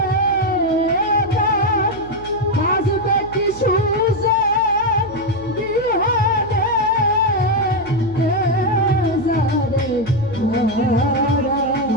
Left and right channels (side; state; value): right; noise; hum, 17 dB below the sound